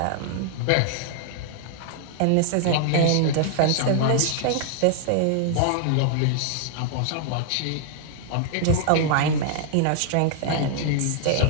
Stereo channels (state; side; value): different; both; correlation -0.01